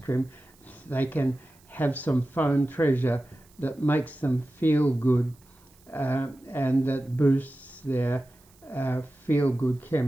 They can have some phone treasure that makes them feel good and that boosts their feel-good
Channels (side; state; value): right; noise; hiss, 30 dB below the sound